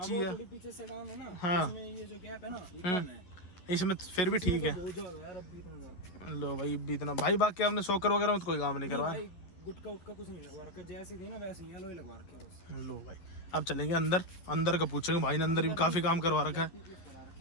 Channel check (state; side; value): late; right; 11 ms